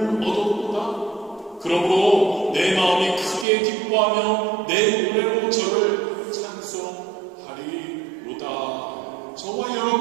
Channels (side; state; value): left; drops out; at 3.5 s